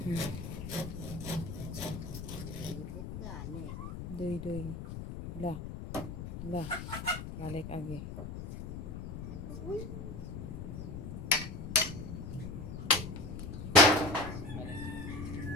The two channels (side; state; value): left; noise; rumble, 7 dB below the sound